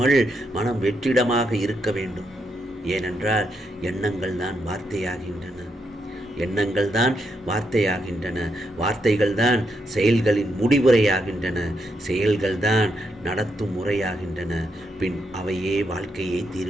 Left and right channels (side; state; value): both; normal; correlation 0.80